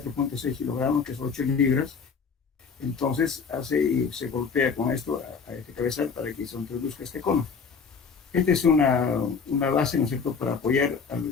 kilogramos, que es 8 libras, entonces se golpea con esto a este cabezal para que se introduzca este cono. Esta es una base, ¿no es cierto?, para apoyar al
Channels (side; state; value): right; quieter; 5.6 dB